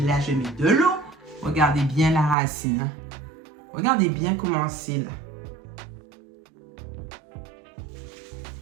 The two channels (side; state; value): left; drops out; at 2.4 s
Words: là, je mets de l'eau. Regardez bien la racine. Regardez bien comment c'est là.